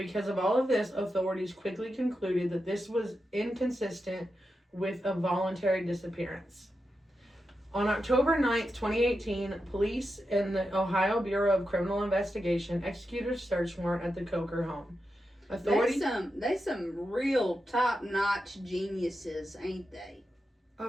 of all of this, authorities quickly concluded that this was inconsistent with a voluntary disappearance. On October 9th, 2018, police and the Ohio Bureau of Criminal Investigation executed a search warrant at the Coker home. They some real top-notch geniuses, ain't they?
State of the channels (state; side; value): normal; both; correlation 0.88